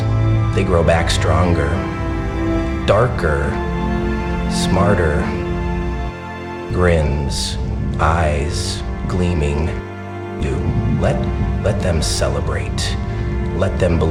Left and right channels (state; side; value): identical; both; correlation 1.00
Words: they grow back stronger, darker, smarter. Grins, eyes gleaming. You let them celebrate. Let them